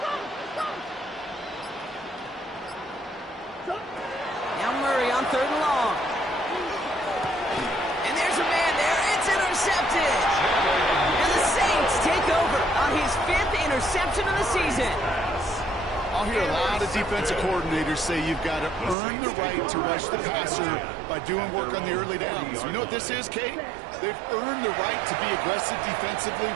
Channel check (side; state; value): left; drops out; at 18.9 s